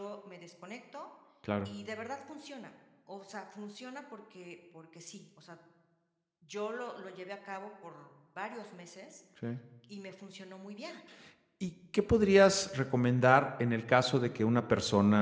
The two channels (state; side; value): identical; both; correlation 1.00